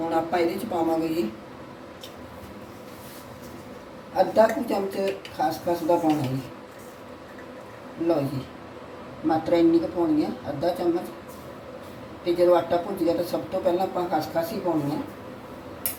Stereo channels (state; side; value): identical; both; correlation 1.00